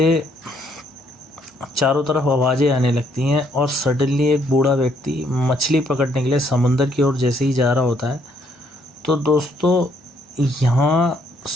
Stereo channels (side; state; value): both; normal; correlation 0.69